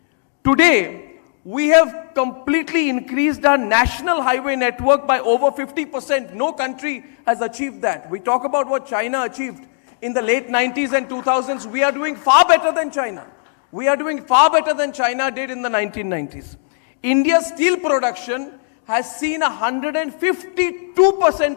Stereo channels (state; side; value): silent; right; digital silence